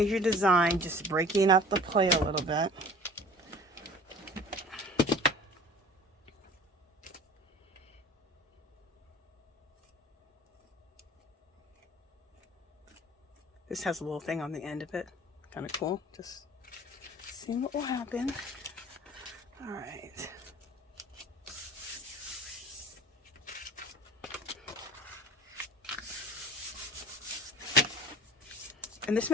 design. Just breaking up the plate a little bit. This has a little thing on the end of it. Kind of cool. Just seeing what will happen. All right. And this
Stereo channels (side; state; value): both; normal; correlation 0.44